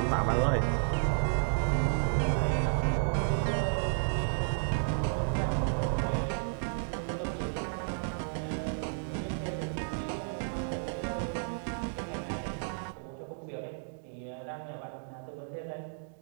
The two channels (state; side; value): silent; left; digital silence